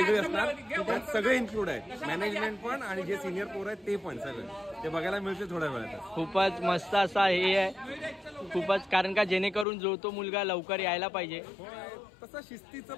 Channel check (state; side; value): drops out; right; at 9.7 s